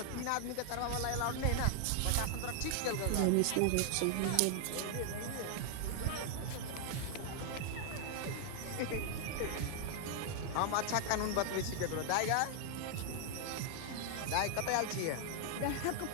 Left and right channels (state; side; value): different; both; correlation 0.00